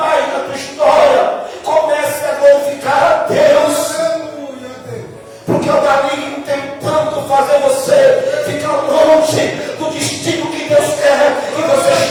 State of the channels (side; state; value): both; identical; correlation 1.00